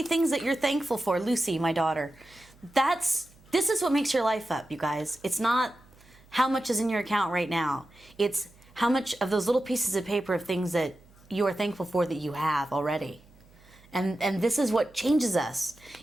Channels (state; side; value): noise; right; hum, 27 dB below the sound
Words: things that you're thankful for, Lucy, my daughter, this is what makes your life up, you guys. It's not how much is in your account right now. It's how much of those little pieces of paper of things that you are thankful for that you have already. And this is what changes us,